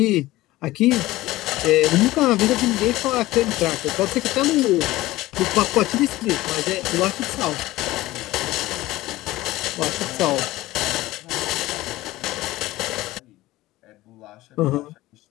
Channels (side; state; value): right; quieter; 17.6 dB